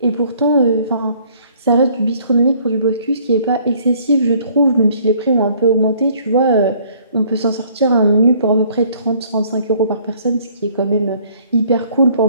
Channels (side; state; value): both; inverted; correlation -0.59